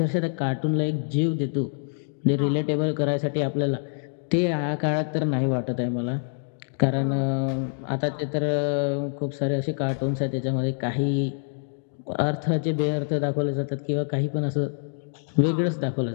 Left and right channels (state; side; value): silent; right; digital silence